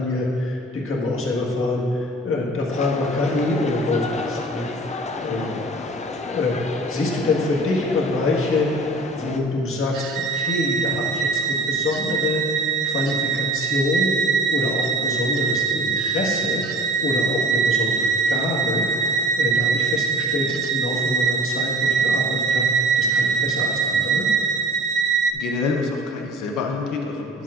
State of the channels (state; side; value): normal; both; correlation 0.45